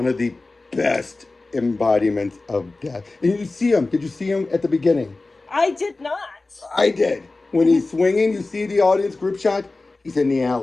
of the best embodiments of death. And you see him. Did you see him at the beginning? I did not. I did. When he's swinging, you see the audience group shot. He's in the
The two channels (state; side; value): quieter; right; 3.3 dB